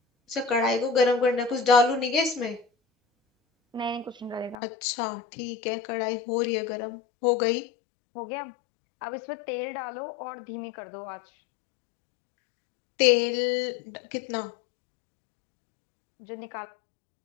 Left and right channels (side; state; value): right; drops out; at 4.5 s